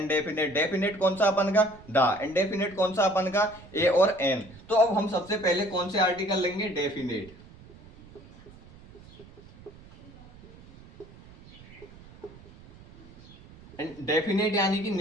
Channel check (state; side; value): noise; right; rumble, 22 dB below the sound